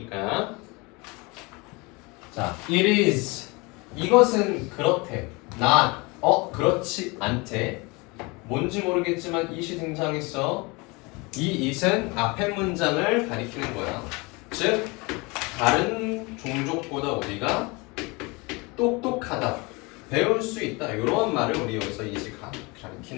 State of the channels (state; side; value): quieter; right; 26.6 dB